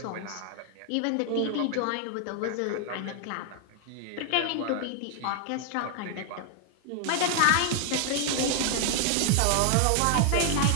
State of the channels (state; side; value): different; both; correlation 0.00